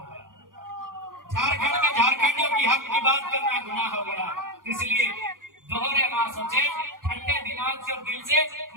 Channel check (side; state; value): left; late; 0.90 ms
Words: गया, झारखंड में झारखंडियों की हक की बात करना गुनाह हो गया। इसलिए दोहरे ना सोचे, ठंडे दिमाग से और दिल से